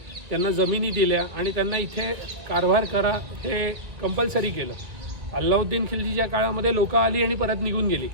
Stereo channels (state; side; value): late; left; 1.6 ms